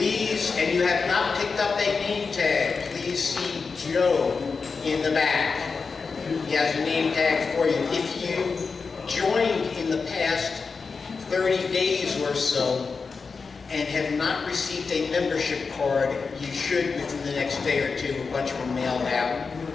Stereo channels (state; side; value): quieter; right; 4.8 dB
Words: and you have not picked up a name tag, please see Joe in the back. He has a name tag for you. If you joined in the past 30 days or so and have not received a membership card, you should within the next day or two. A bunch of them mailed out